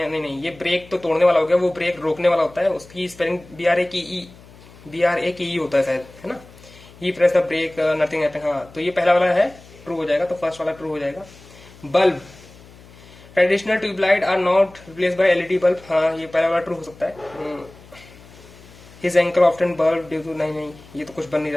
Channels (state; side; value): noise; left; hum, 22 dB below the sound